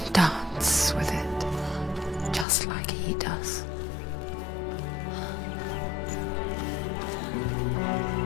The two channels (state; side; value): drops out; right; at 2.5 s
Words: dance with it, just like he does.